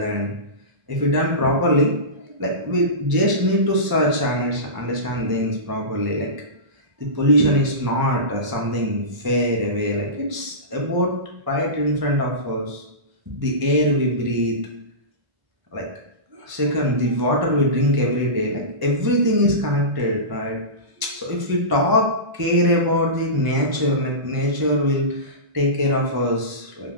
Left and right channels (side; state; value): left; late; 1.0 ms